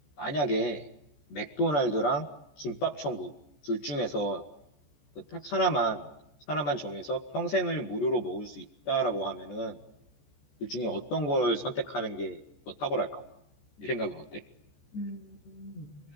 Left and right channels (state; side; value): late; right; 14 ms